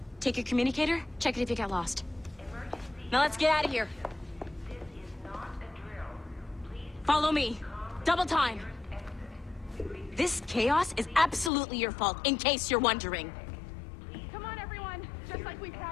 take your communicator, check it if you got lost. Now let's get out of here. This is not a drill. Please Follow me. Double time. This chaos is absolutely your fault, in case you're wondering. Come on, everyone. Just like we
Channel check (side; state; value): right; drops out; at 11.5 s